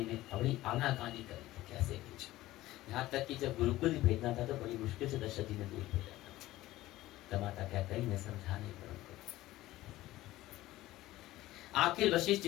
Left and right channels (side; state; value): right; quieter; 16.5 dB